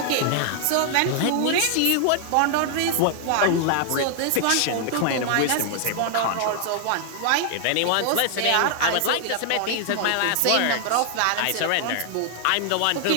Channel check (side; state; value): both; different; correlation 0.00